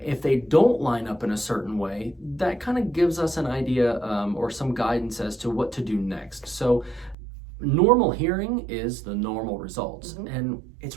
If they don't line up in a certain way, that kind of gives us an idea or some guidance as to what to do next. So normal hearing is the normal results. And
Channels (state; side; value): drops out; left; at 7.2 s